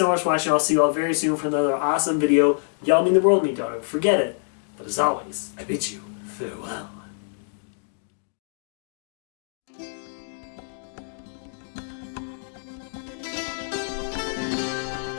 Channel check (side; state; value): right; silent; digital silence